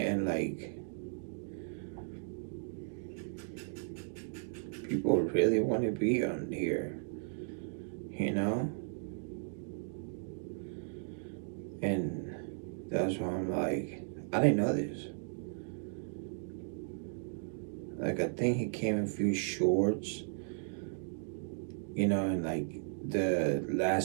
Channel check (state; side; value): silent; left; digital silence